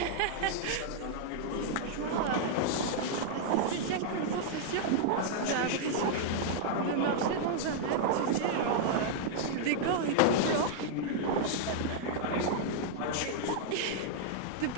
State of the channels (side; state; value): both; different; correlation -0.01